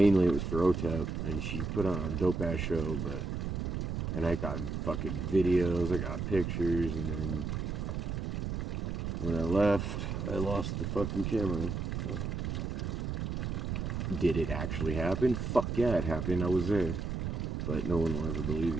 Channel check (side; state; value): right; noise; rumble, 2 dB below the sound